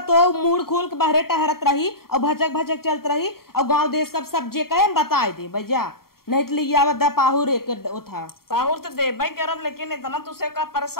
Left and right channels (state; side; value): late; right; 0.93 ms